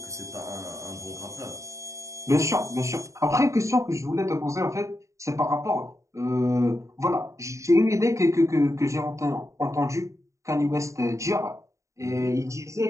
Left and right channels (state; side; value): late; left; 0.15 ms